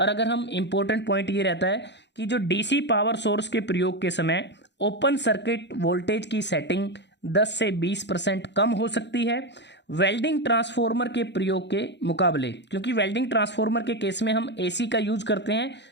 अगर हम इम्पोर्टेंट पॉइंट ये रहता है कि जो डीसी पावर सोर्स के प्रयोग के समय ओपन सर्किट वोल्टेज की सेटिंग 10 से 20% कम हो सकती है वेल्डिंग ट्रांसफार्मर के प्रयोग के मुकाबले, क्योंकि वेल्डिंग ट्रांसफार्मर के केस में हम एसी का यूज करते हैं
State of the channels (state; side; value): late; right; 0.51 ms